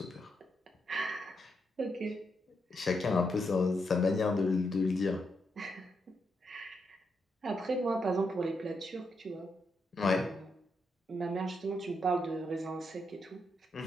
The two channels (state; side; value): normal; both; correlation 0.81